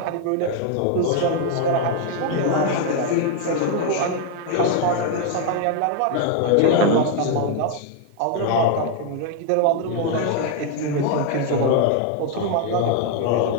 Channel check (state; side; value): different; both; correlation 0.00